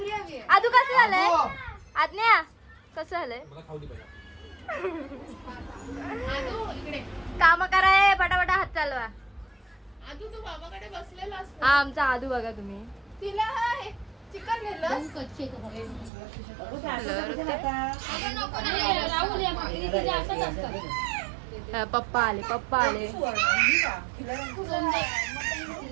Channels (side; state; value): left; drops out; at 16.1 s